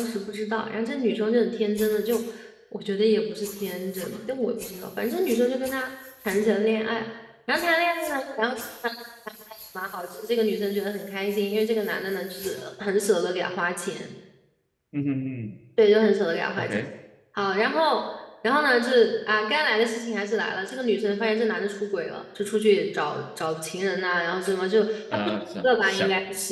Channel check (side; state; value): both; identical; correlation 1.00